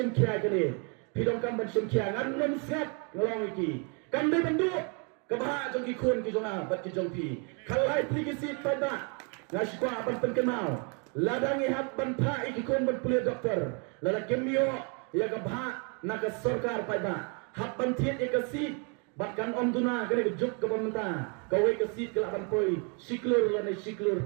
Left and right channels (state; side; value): quieter; left; 35.9 dB